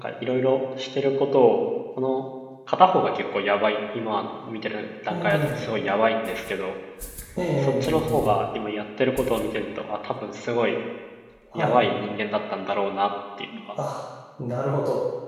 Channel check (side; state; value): both; identical; correlation 1.00